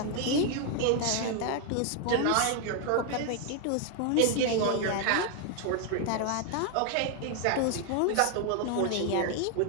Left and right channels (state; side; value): different; both; correlation 0.01